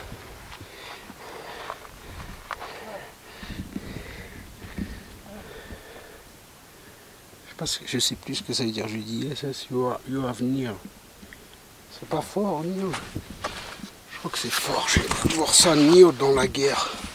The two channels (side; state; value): both; identical; correlation 1.00